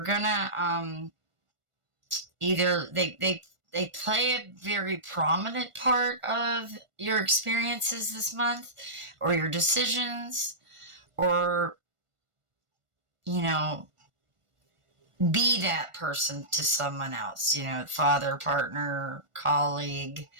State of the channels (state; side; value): late; left; 1.4 ms